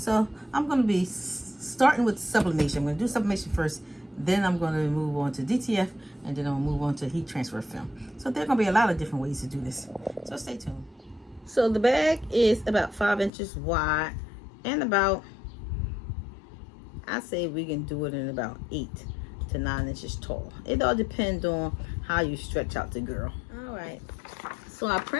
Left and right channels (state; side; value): drops out; right; at 13.3 s